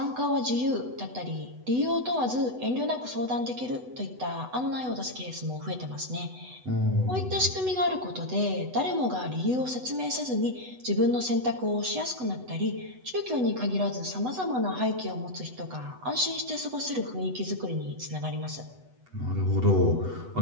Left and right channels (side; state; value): left; late; 8.0 ms